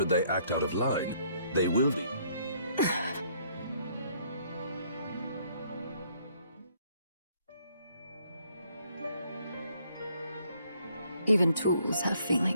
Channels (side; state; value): both; inverted; correlation -0.66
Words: they act out of line, they will be. Even tools have